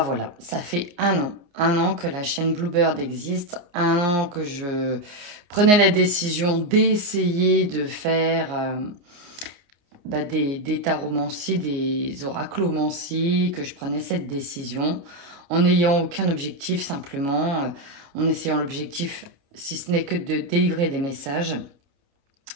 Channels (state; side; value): late; left; 29 ms